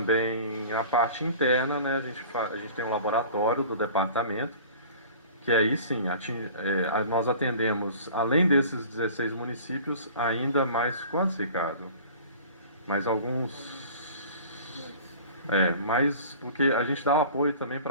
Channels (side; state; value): both; inverted; correlation -0.43